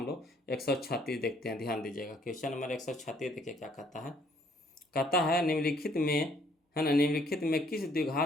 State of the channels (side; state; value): both; normal; correlation 0.64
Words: लोग 136 देखते हैं, ध्यान दीजिएगा। क्वेश्चन नंबर 136 देखिए क्या कहता है। कहता है निम्नलिखित में, है ना, निम्नलिखित में किस